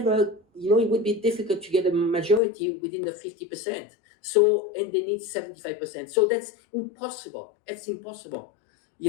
it would be difficult to get a majority within the 50%. So, and they need 75%. So that's impossible. It's impossible.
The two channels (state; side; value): drops out; right; at 2.4 s